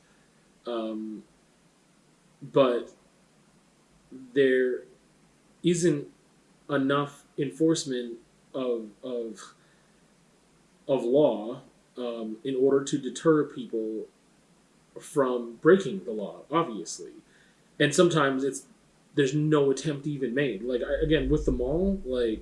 But there isn't enough enforcement of law in order to deter people from breaking the law, obviously. And sometimes there's no attempt even made. Like, again, with the mall,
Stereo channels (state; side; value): identical; both; correlation 1.00